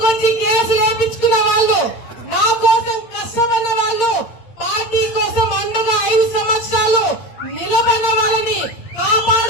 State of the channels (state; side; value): late; right; 8.8 ms